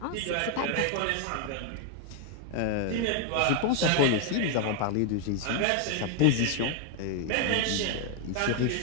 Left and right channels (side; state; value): both; different; correlation 0.01